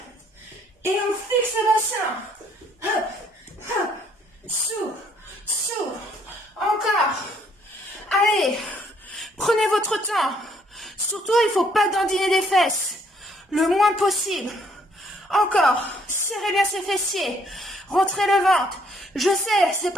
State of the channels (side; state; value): both; normal; correlation 0.66